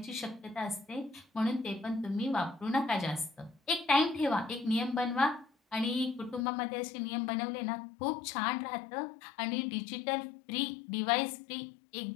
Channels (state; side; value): drops out; right; at 6.5 s